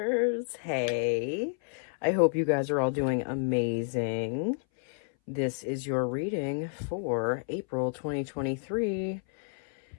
Hey, I hope you guys are all doing amazing. This is your reading for April 2023.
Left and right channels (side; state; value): right; silent; 58 dB below the other